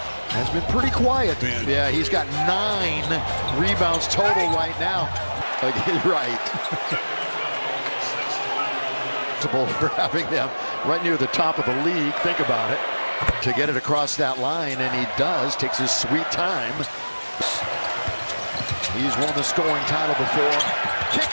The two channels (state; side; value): inverted; both; correlation -1.00